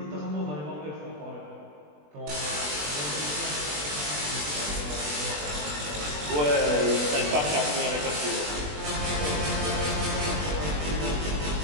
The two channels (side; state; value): left; late; 20 ms